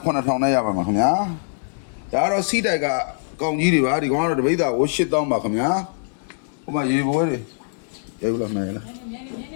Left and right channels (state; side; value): silent; right; digital silence